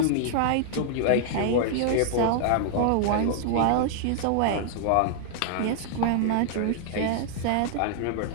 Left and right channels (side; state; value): both; different; correlation 0.00